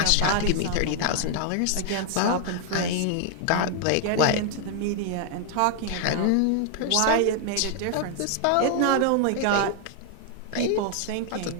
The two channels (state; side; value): different; both; correlation 0.00